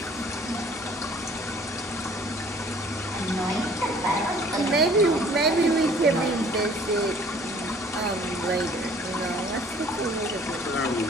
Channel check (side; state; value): both; normal; correlation 0.54